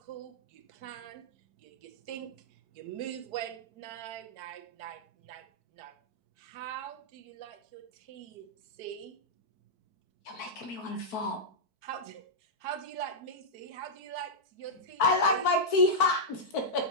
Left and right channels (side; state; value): right; late; 4.5 ms